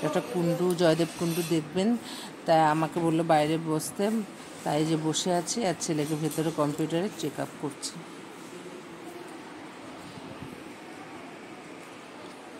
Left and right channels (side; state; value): both; identical; correlation 1.00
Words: একটা কুণ্ডু, জয়দেব কুণ্ডু দেখবেন, তাই আমাকে বললো বাইরে বসতে, তাই যে বসে আছি। আর ছেলেকে ভেতরে কম্পিউটারে চেক আপ করছি।